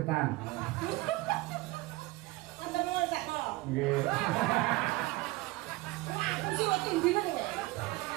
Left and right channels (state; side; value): quieter; left; 20.5 dB